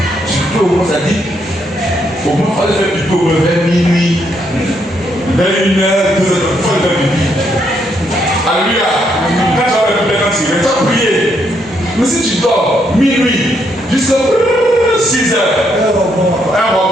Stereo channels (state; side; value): normal; both; correlation 0.75